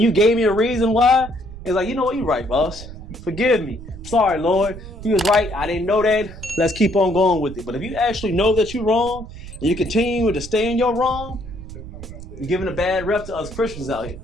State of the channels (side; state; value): right; noise; rumble, 13 dB below the sound